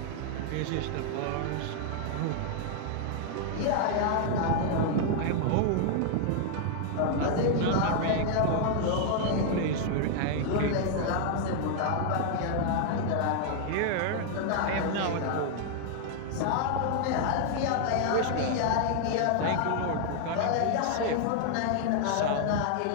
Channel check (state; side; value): different; both; correlation 0.00